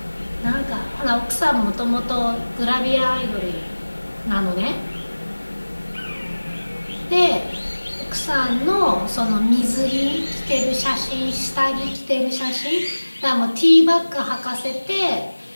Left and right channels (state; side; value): inverted; both; correlation -1.00